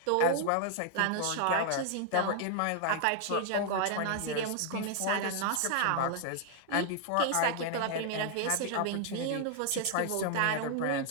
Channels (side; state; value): both; different; correlation 0.00